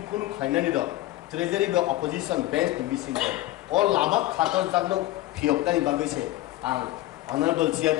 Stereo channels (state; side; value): quieter; right; 16.3 dB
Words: kun khainani do treasury be opposition bench ni bising all lama khator jagno phiokdani bagai se ang honorable